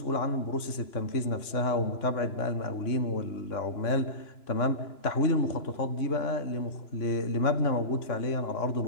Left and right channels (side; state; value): right; late; 2.9 ms